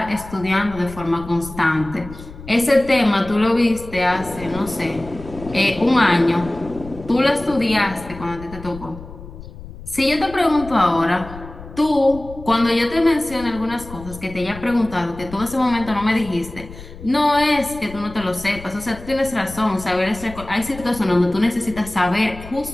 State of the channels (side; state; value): left; noise; rumble, 15 dB below the sound